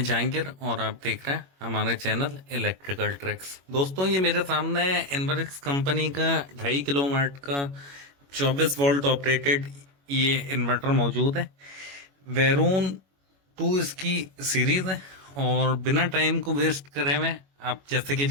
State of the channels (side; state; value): left; late; 21 ms